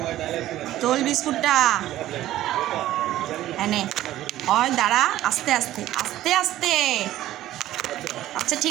তোল বিস্কুটটা এনে। হয় দাঁড়া, আস্তে আস্তে আস্তে আস্তে। আচ্ছা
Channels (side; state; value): left; quieter; 14.2 dB